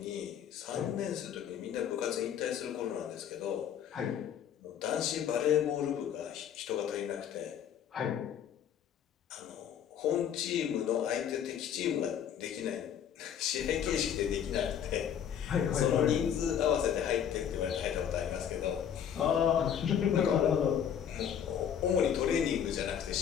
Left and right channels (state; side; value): quieter; right; 8.9 dB